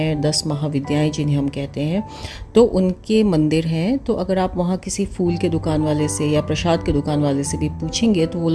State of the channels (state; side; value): identical; both; correlation 1.00